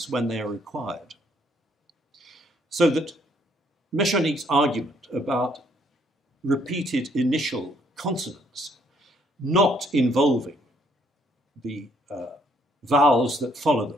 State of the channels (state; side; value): normal; both; correlation 0.67